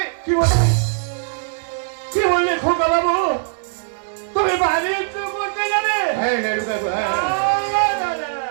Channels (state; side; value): silent; left; digital silence